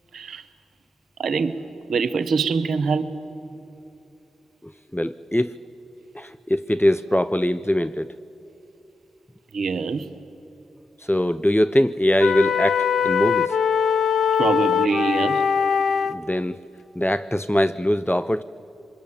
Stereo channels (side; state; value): both; normal; correlation 0.86